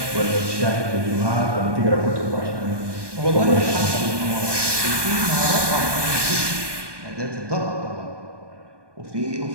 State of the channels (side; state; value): left; late; 1.2 ms